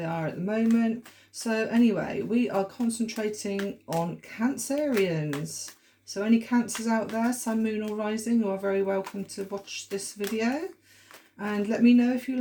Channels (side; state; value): both; identical; correlation 1.00